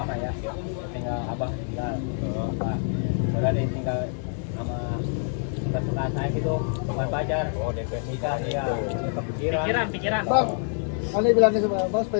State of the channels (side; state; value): right; silent; 61 dB below the other